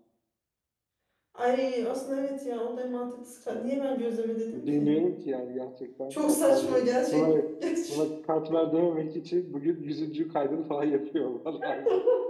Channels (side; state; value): both; identical; correlation 1.00